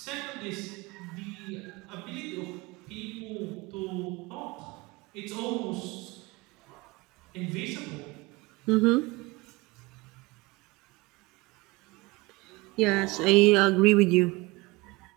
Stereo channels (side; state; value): left; quieter; 22.7 dB